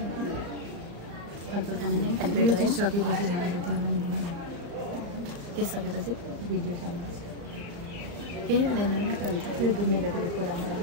फलफुल खाने यो चिज सकेपछि खानु पर्थ्यो नि। के सकेपछि भिडियो सकेपछि केही हुँदैन नि त। त्यो डुब्ने जतिको कुरा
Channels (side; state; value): left; late; 35 ms